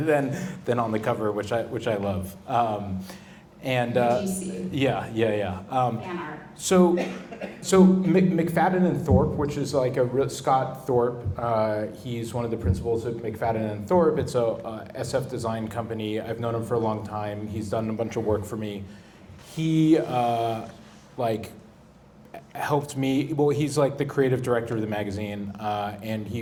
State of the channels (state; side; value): identical; both; correlation 1.00